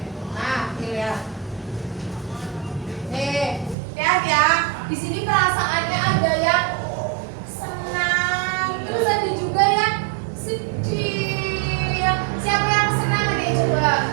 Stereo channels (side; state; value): left; drops out; at 3.8 s